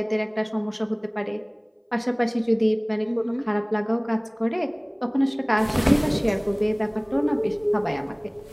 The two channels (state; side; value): identical; both; correlation 1.00